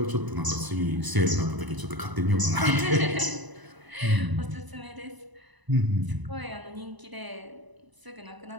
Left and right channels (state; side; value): late; left; 1.0 ms